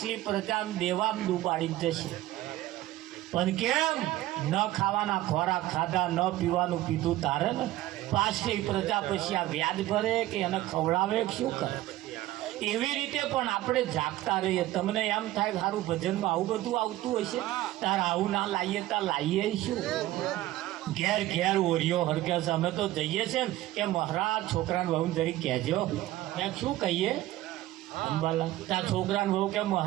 પ્રજા દેવામાં ડૂબાડી જશે. પણ કેમ? ન ખાવાના ખોરાક ખાધા, ન પીવાનું પીધું તારે ને. પાછલી પ્રજા પછી આ વ્યાજ ભરે કે એને ખવડાવે શું કરે? એવી રીતે પણ આપણે જાગતા રહીએ. તમને એમ થાય સારું ભજનમાં આવું બધું આવતું હશે, તાર આવું ના લાવીએ તાર લાવીએ શું? ઘેર ઘેર ઓરિયો હરગે છે. અમે તો જઈએ છે ને કે મહારાજ છોકરાને બહુ જરી કહેજો. મેં શું કહીએ અંબાલા? ત્યાં છોકરાને બહુ કે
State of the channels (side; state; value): left; quieter; 15.9 dB